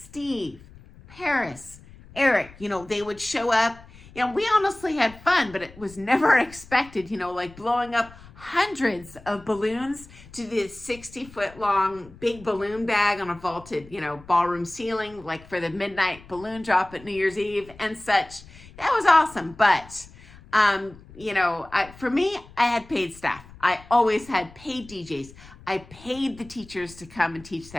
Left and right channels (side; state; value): left; noise; rumble, 21 dB below the sound